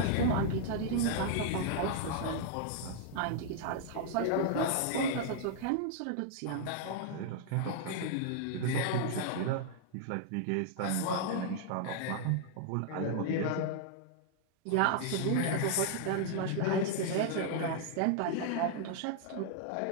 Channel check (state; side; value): different; both; correlation -0.01